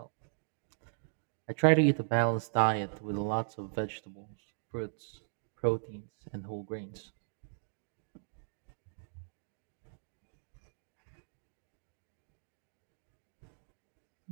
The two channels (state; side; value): silent; left; digital silence